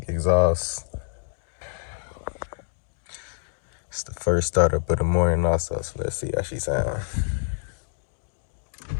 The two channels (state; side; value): silent; right; digital silence